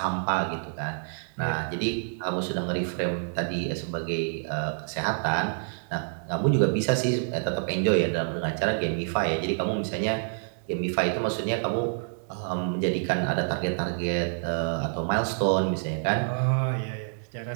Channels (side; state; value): left; silent; digital silence